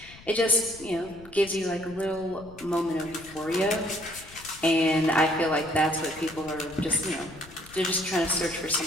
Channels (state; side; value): noise; left; rumble, 20 dB below the sound